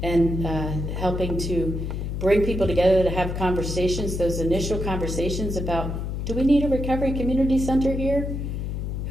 and helping to bring people together to have conversations, those initial conversations about, do we need a recovery community center here?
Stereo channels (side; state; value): left; noise; hum, 3 dB below the sound